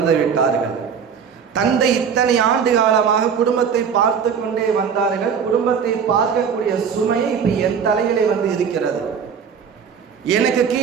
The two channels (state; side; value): quieter; left; 6.9 dB